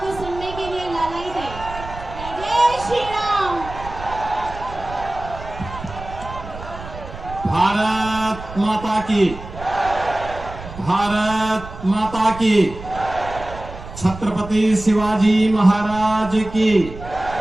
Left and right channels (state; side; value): noise; right; rumble, 13 dB below the sound